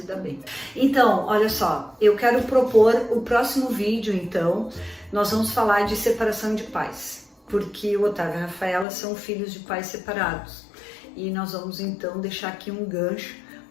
dar bem. Então, olha só, eu quero propor o próximo vídeo, então, nós vamos falar de separação de pais, porque o Otávio e a Rafaela são filhos de pais separados. E nós vamos, então, deixar aqui um gancho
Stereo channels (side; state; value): right; drops out; at 8.8 s